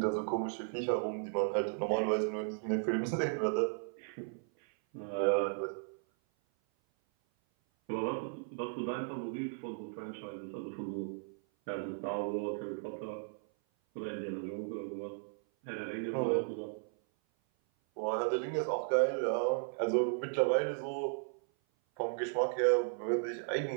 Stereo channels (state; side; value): silent; left; 54 dB below the other